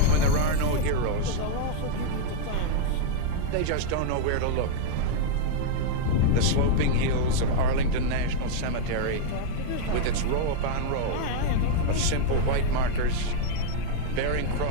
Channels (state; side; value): different; both; correlation -0.01